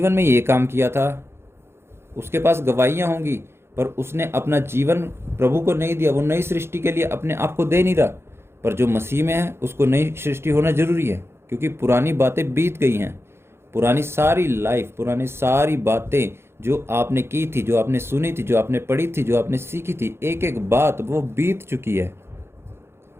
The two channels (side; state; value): left; late; 0.12 ms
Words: में ये काम किया था। उसके पास गवाहियाँ होंगी, पर उसने अपना जीवन प्रभु को नहीं दिया। वो नई सृष्टि के लिए अपने आप को दे नहीं रहा। पर जो मसीह में है उसको नई सृष्टि होना जरूरी है, क्योंकि पुरानी बातें बीत गई हैं। पुरानी सारी लाइफ, पुरानी सारी बातें जो आपने की थी, जो आपने सुनी थी, जो आपने पढ़ी थी, जो आपने सीखी थी, एक एक बात वो बीत चुकी है।